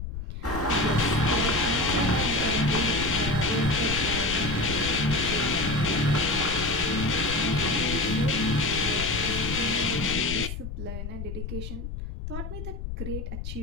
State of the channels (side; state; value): left; noise; rumble, 7 dB below the sound